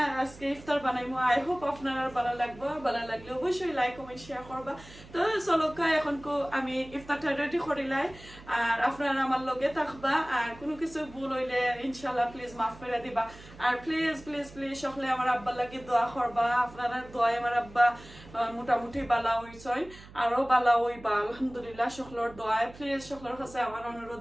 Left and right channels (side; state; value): right; noise; hum, 19 dB below the sound